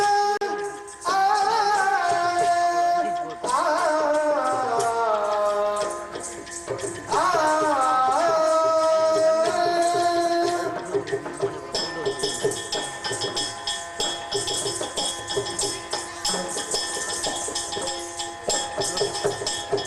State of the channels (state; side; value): identical; both; correlation 1.00